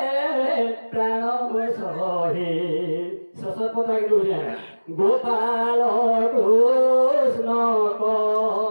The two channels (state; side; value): inverted; both; correlation -1.00